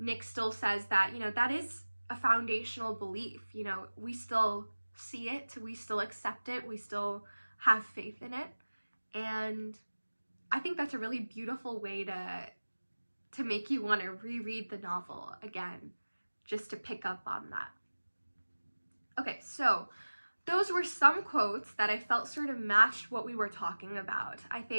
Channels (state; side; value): inverted; both; correlation -1.00